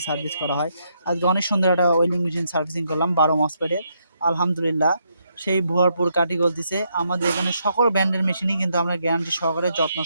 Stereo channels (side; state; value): both; inverted; correlation -0.77